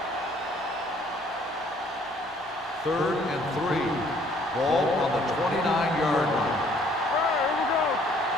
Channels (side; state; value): both; normal; correlation 0.61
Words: 3rd and 3. Ball on the 29-yard line. All right, here we go.